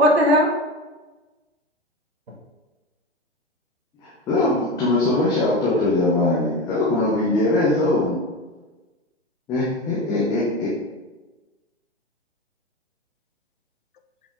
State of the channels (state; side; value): normal; both; correlation 0.24